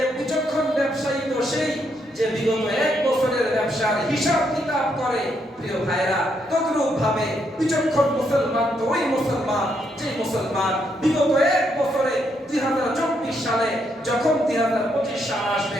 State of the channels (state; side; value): normal; both; correlation 0.76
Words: বিচক্ষণ ব্যবসায়ী তো সেই যে বিগত 1 বছরের ব্যবসার হিসাব কিতাব করে। প্রিয় ভাইরা, তদ্রূপ ভাবে বিচক্ষণ মুসলমান তো ওই মুসলমান যে মুসলমান বিগত 1 বছরে 2024 সালে যখন 2025 সাল